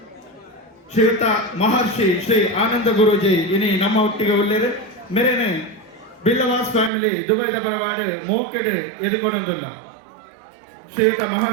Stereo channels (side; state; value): left; drops out; at 6.9 s